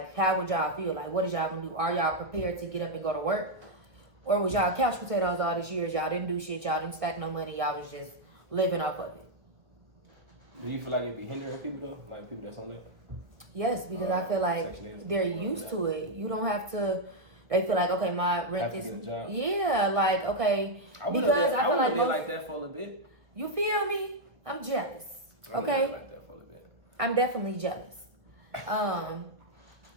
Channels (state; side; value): late; left; 1.6 ms